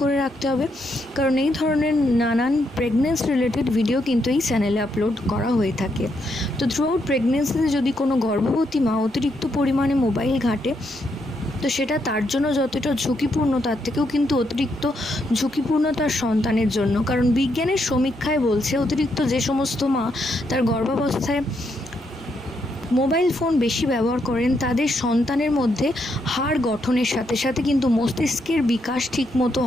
করে রাখতে হবে, কারণ এই ধরনের নানান প্রেগনেন্সি রিলেটেড ভিডিও কিন্তু এই চ্যানেলে আপলোড করা হয়ে থাকে। তো থ্রু আউট প্রেগনেন্সিতে যদি কোনো গর্ভবতী মা অতিরিক্ত পরিমাণে মোবাইল ঘাঁটে, তো সেটা তার জন্য যতটা ঝুঁকিপূর্ণ তার থেকেও কিন্তু অতিরিক্ত ঝুঁকিপূর্ণ তার সন্তানের জন্য। কারণ বিজ্ঞানের সমীক্ষায় বলছে অতিরিক্ত যে সমস্ত মা তার গর্ভাবস্থায় মোবাইল ফোন বেশি ব্যবহার করেন তাদের সন্তানের মধ্যে হাড় গঠনের সাথে সাথে কিন্তু মস্তিষ্কের বিকাশ ঠিকমতো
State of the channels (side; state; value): both; normal; correlation 0.78